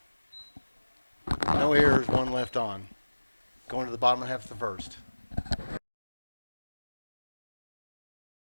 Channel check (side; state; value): both; inverted; correlation -1.00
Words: No errors, 1 left on. Going to the bottom half of the first.